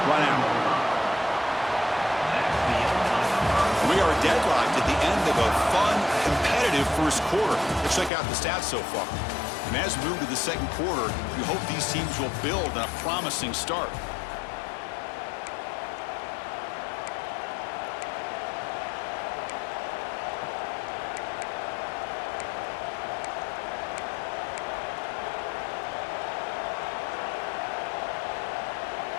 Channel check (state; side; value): drops out; right; at 8.1 s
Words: run out. We are deadlocked at the end of a fun, competitive 1st quarter. Let's check out the stats so far. And as we move to the 2nd quarter, we hope these teams will build on a promising start.